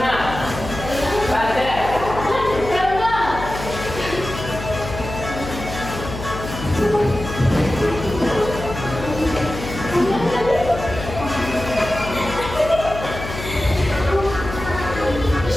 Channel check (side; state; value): left; noise; hum, 9 dB below the sound